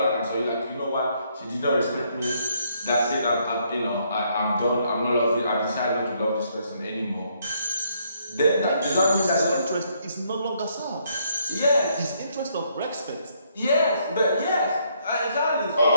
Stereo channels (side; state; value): both; inverted; correlation -0.71